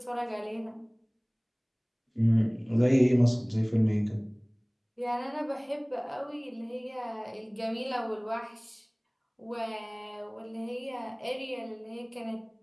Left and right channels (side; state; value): both; identical; correlation 1.00